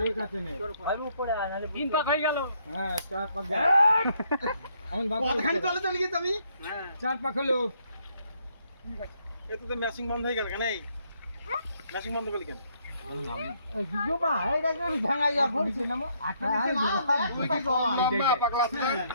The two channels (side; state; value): both; inverted; correlation -0.71